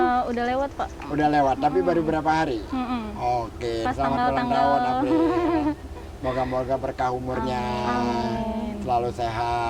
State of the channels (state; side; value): identical; both; correlation 1.00